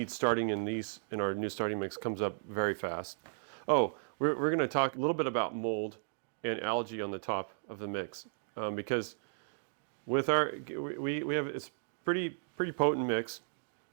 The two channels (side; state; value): left; silent; digital silence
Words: starting in our new starting mix comes up very fast. Oh, we're going to talk a little bit about mold and algae on the top of the mix, because with we have it's pretty potent mix,